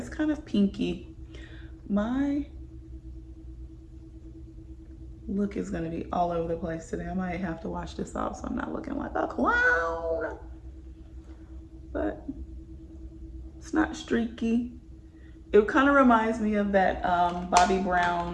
kind of pinky. My look is gonna be all over the place today. I might have to wash this off so I'm not looking like a clown. But it's not streaky. It kind of reminds me of that Bobbi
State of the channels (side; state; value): both; identical; correlation 1.00